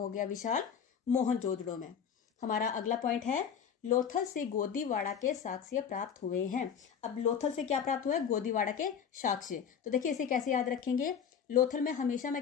गया, विशाल मोहनजोदड़ो में। हमारा अगला पॉइंट है लोथल से गोदीवाड़ा के साक्ष्य प्राप्त हुए हैं। अब लोथल से क्या प्राप्त हुआ है, गोदीवाड़ा के साक्ष्य। तो देखिए इसे कैसे याद रखेंगे, लोथल में हमेशा मैं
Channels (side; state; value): right; quieter; 7.5 dB